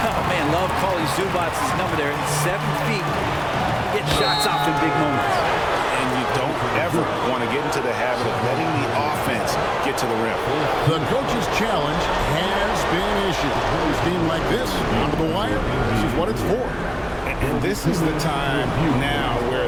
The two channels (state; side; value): identical; both; correlation 1.00